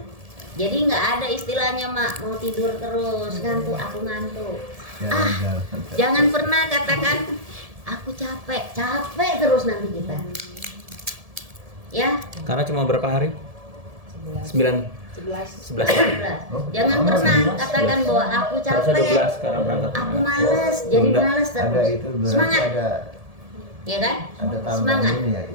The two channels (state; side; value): late; left; 1.7 ms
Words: jadi nggak ada istilahnya Mak mau tidur terus, ngantuk, aku ngantuk. Jangan pernah katakan aku capek terus nanti kita. Ya. Karena cuma berapa hari? 11. Jangan pernah katakan bahwa aku capek, aku males, jadi males terus. Semangat. ya kan? Ada tambahan Semangat. ini ya,